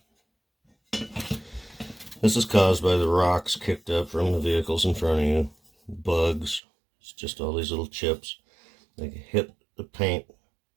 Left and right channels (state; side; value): drops out; left; at 6.6 s